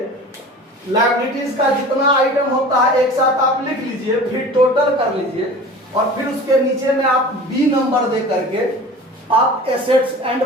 लायबिलिटीज का जितना आइटम होता है एक साथ आप लिख लीजिए, फिर टोटल कर लीजिए और फिर उसके नीचे में आप बी नंबर दे करके आप एसेट्स एंड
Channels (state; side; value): normal; both; correlation 0.39